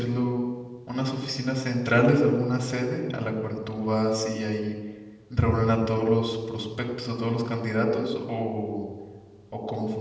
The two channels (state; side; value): identical; both; correlation 1.00